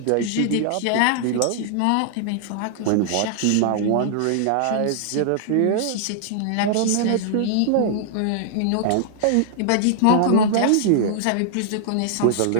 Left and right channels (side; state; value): both; different; correlation -0.01